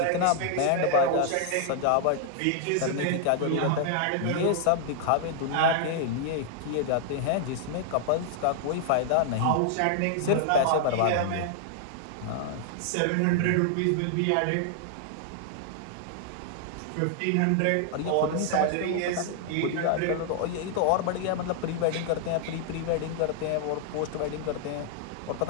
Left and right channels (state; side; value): different; both; correlation 0.00